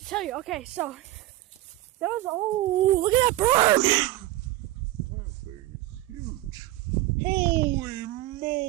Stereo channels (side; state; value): left; quieter; 15.6 dB